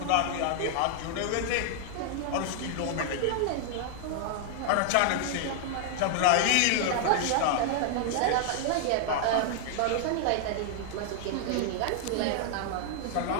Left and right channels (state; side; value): different; both; correlation 0.00